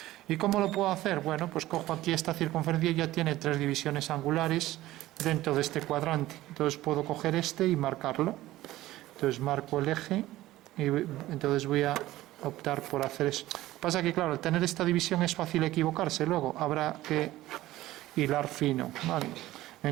¿Y cómo lo puedo hacer? Bueno, pues cojo aquí esta circunferencia y ya tiene 3 divisiones angulares dentro de este cuadrante. Entonces puedo coger este y marcarlo. Entonces marco el eje y entonces voy a optar por hacer eso. Pasa que, claro, al tener esta división es fácil equivocarse, luego habrá que hilar fino, ¿vale?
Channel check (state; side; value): quieter; left; 16.1 dB